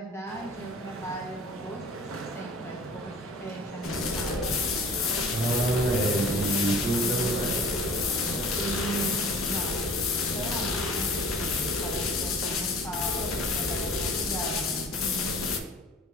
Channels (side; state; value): both; normal; correlation 0.46